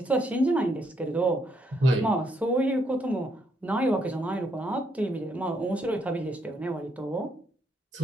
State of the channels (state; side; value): normal; both; correlation 0.74